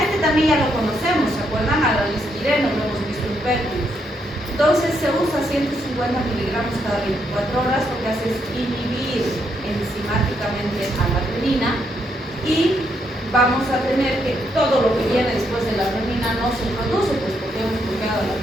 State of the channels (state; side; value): normal; both; correlation 0.76